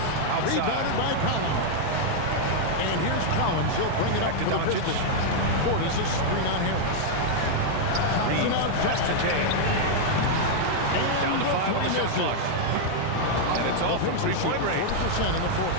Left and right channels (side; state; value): both; different; correlation -0.01